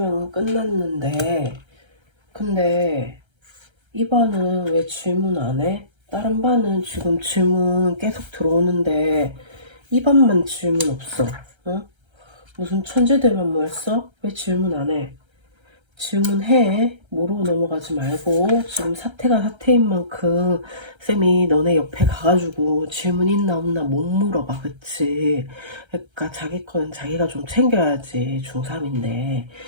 끝났는데, 근데 이 반은 왜 질문 안 해? 다른 반은 지금 질문 계속 들어오는데 이 반만 질문 없어. 어? 무슨 천재들만 모였어? 왜 질문 안 해? 질문해. 모르고 넘어가지 말고 지금 사태가 사태인 만큼 쌤이 너네 옆에 가가지고 질문 있나 없나 못 물어봐. 그치? 그러니까 자기 거는 자기가 좀 챙겨야지. 중3인데.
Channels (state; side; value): late; left; 1.3 ms